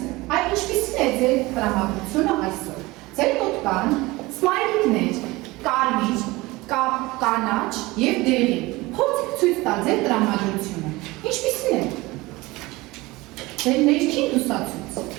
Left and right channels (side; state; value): left; quieter; 21.3 dB